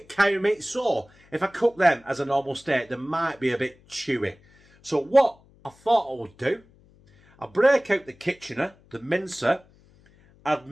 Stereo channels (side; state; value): left; noise; hum, 29 dB below the sound